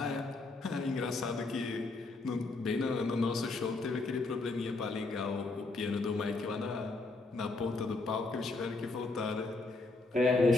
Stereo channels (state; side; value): quieter; right; 3.5 dB